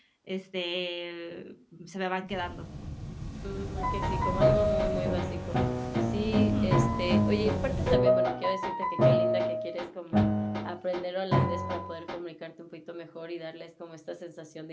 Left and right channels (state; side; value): identical; both; correlation 1.00